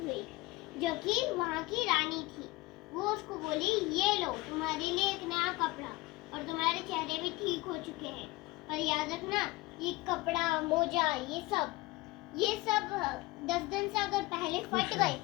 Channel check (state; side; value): quieter; right; 21.1 dB